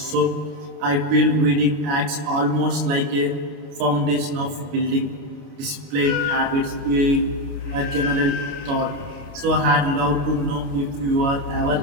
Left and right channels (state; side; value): late; left; 29 ms